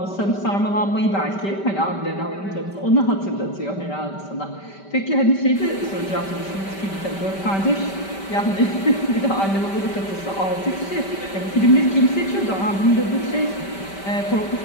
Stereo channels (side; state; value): right; late; 5.1 ms